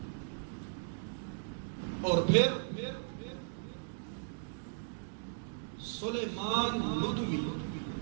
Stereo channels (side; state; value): left; silent; digital silence